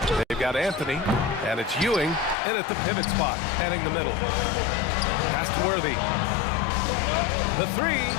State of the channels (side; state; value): right; drops out; at 2.4 s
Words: They've got Anthony, and it's Ewing in at the pivot spot, heading the middle. Pass to Worthy. The 3.